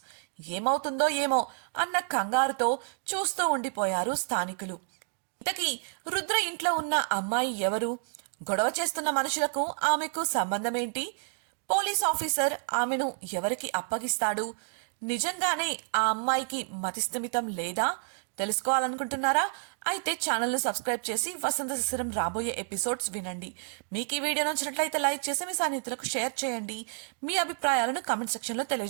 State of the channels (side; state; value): left; silent; digital silence